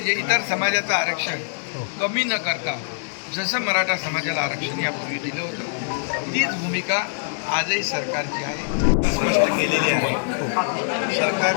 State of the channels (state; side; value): silent; right; digital silence